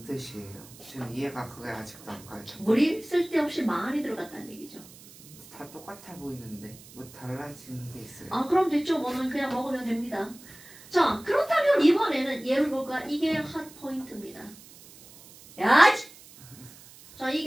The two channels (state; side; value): noise; right; hiss, 21 dB below the sound